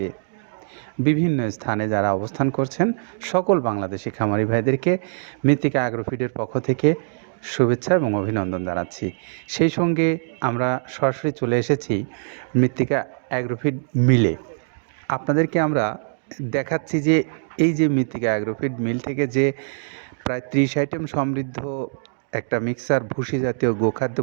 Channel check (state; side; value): silent; left; digital silence